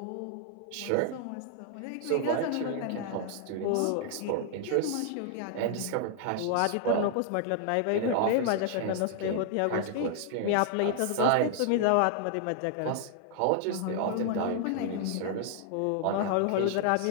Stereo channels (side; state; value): both; different; correlation 0.00